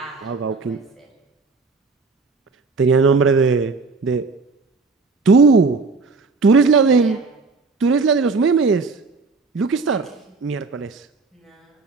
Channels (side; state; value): left; quieter; 4.2 dB